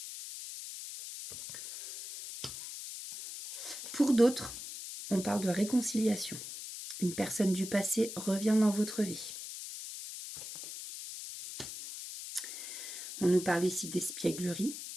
Pour d'autres, on parle de réconciliation. Une personne du passé revient dans votre vie. On nous parle ici d'espièglerie.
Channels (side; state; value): left; noise; hiss, 9 dB below the sound